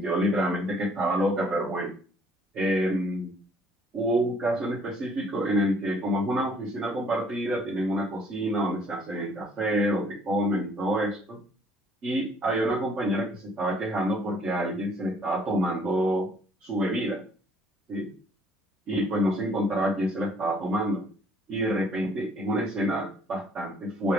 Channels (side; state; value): both; normal; correlation 0.61